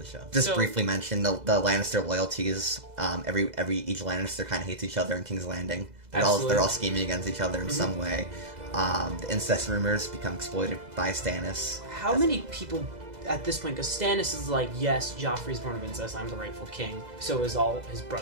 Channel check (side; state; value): left; late; 2.0 ms